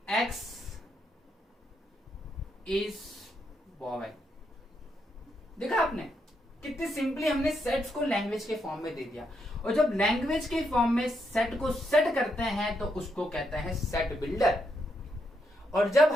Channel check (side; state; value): both; normal; correlation 0.79